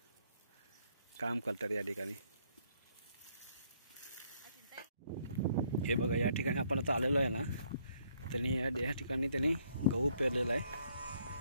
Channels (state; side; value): inverted; both; correlation -0.68